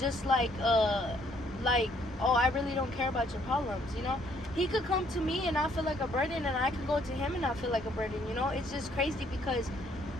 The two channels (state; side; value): normal; both; correlation 0.66